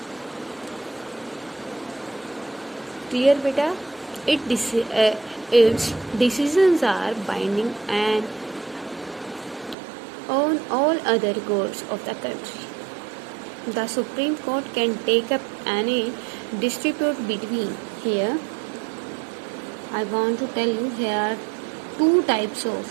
क्लियर बेटा? Its decisions are binding and on all other courts of the country. The supreme court can take up any dispute between. Here I want to tell you, here are two types of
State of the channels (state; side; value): drops out; left; at 9.8 s